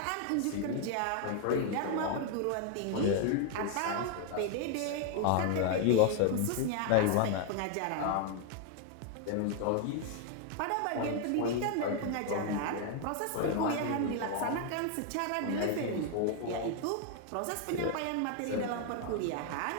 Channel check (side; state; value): both; different; correlation 0.00